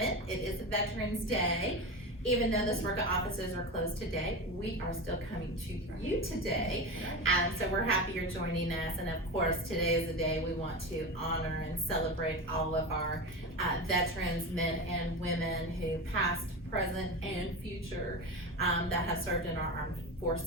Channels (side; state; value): both; normal; correlation 0.23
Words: It is Veterans Day. Even though the SWRCA offices are closed today, we are still coming to you today. So we're happy you're joining us. And of course, today is the day we want to honor and celebrate all of our veterans, men and women who past, present, and future that have served in our armed